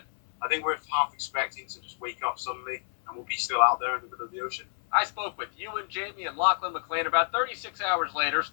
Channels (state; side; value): silent; right; 57 dB below the other